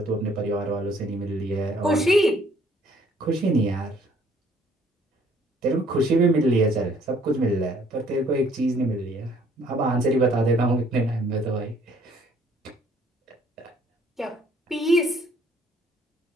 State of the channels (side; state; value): both; normal; correlation 0.61